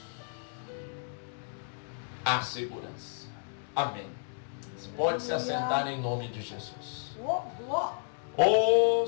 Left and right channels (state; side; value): silent; right; digital silence